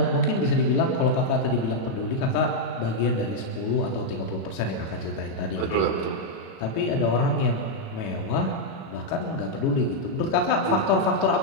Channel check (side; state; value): right; late; 36 ms